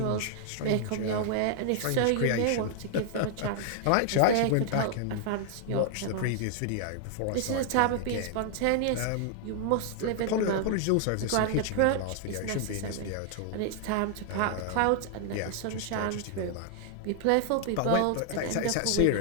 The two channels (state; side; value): different; both; correlation 0.00